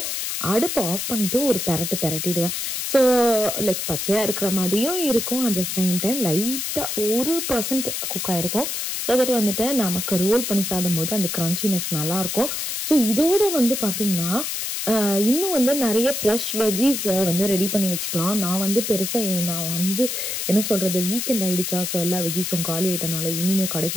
அடுப்பு ஆஃப் பண்ணிவிட்டு ஒரு பெரட்டிடுவேன். ஸோ லைக் பச்சையாக இருக்கிற மாதிரியும் இருக்கும், அட் த சேம் டைம் லைட்டாக 1% குக் ஆகிருக்கும். ஸோ தட் வந்துட்டு நமக்கு ரோல் பண்ணி சாப்பிடும்போது அந்த க்ரன்ச்சினஸ் நல்லாயிருக்கும். ஸோ இதோட வந்து பார்த்திங்கன்னா இன்னும் வந்து நிறைய ஃப்ரெஷ் வெஜ்ஜீஸ் வந்து ரெடி பண்ணி வச்சுக்கலாம். நான் வந்து பெருசாக நான் வந்து என்ன சொல்கிறது, வீக்கெண்ட் ஆகிடுச்சா, ஸோ எல்லா வெஜ்ஜீஸும் காலி ஆகிட்டனால இனிமேல்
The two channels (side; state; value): left; noise; hiss, 3 dB below the sound